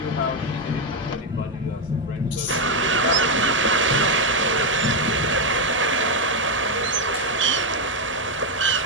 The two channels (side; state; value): both; normal; correlation 0.04